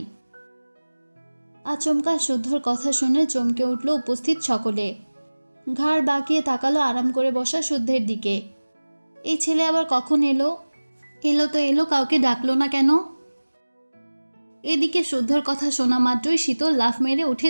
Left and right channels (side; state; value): both; inverted; correlation -1.00